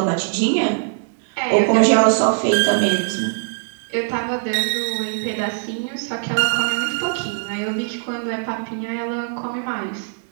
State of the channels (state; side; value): silent; left; digital silence